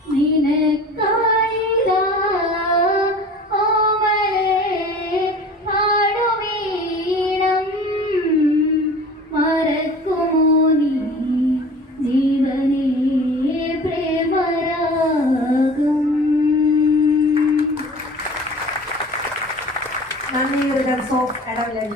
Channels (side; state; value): both; normal; correlation 0.41